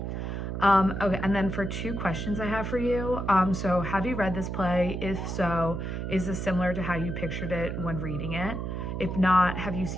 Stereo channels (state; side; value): noise; right; hum, 4 dB below the sound